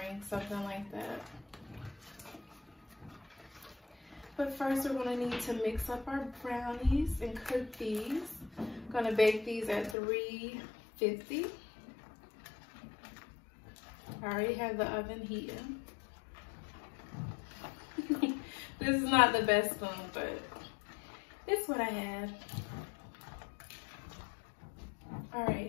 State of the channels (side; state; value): right; drops out; at 10.0 s